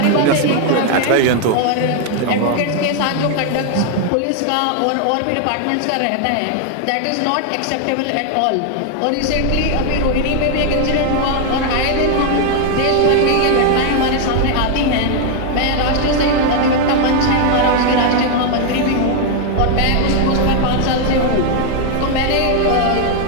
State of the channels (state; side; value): different; both; correlation 0.00